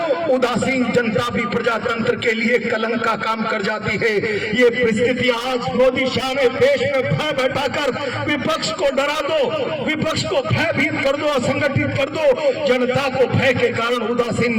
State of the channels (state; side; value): identical; both; correlation 1.00